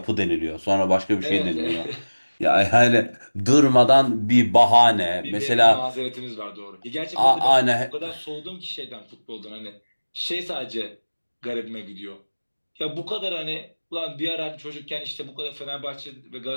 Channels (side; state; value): both; inverted; correlation -1.00